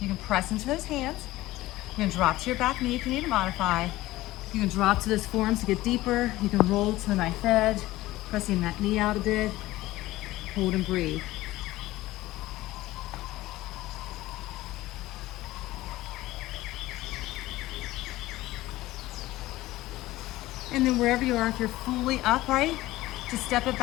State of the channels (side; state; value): right; quieter; 17.2 dB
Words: You can press into those hands. You can drop to your back knee if you need to modify. You can drop to those forearms to get deeper. You can roll to the knife edge, pressing that knee out a bit. Hold and breathe. wherever you are, if you're fully upright, just step it